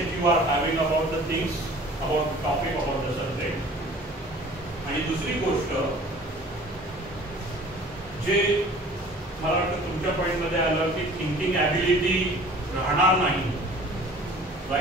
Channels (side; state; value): both; normal; correlation 0.47